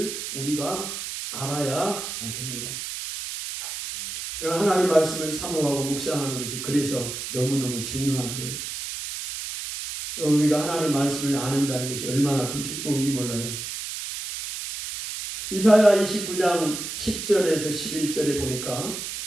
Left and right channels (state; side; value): noise; right; hiss, 6 dB below the sound